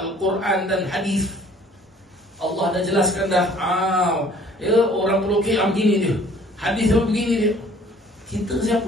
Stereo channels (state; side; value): normal; both; correlation 0.54